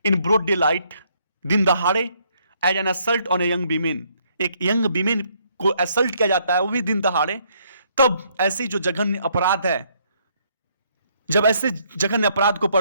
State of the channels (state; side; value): inverted; both; correlation -0.70